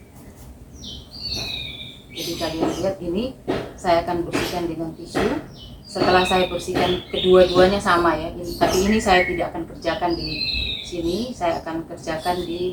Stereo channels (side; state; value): both; identical; correlation 1.00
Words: Jadi kalian lihat ini saya akan bersihkan dengan tisu. Setelah saya bersihkan kedua-duanya sama ya, tapi ini saya tidak akan kerjakan di sini, saya akan kerjakan